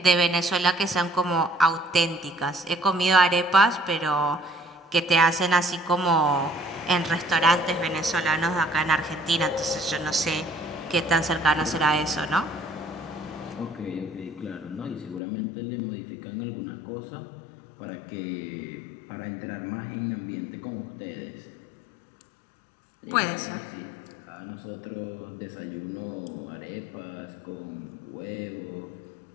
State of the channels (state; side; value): drops out; right; at 15.2 s